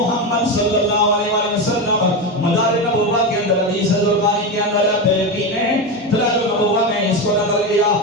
صلی اللہ علیہ وسلم. مدار نبوت کے اندر حدیث زرقانی کے اندر بہقی نے دلائل نبوت میں اس کو نقل کیا.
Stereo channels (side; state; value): both; normal; correlation 0.16